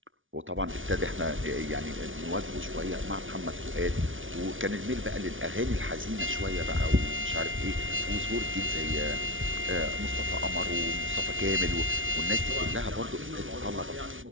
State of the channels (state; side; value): late; left; 0.57 ms